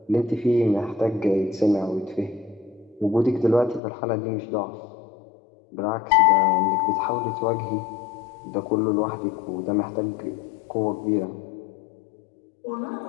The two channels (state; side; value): drops out; right; at 3.8 s